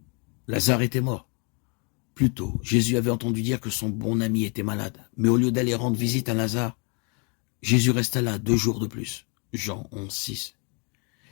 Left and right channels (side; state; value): right; quieter; 34.9 dB